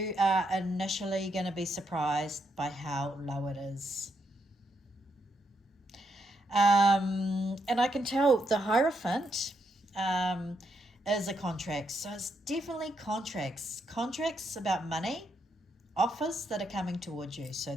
are initially going to be surprised by how low it is. And I can tell the Hierophant is a contract. So it's definitely contracts about money, offers that are coming towards you. So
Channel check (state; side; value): normal; both; correlation 0.79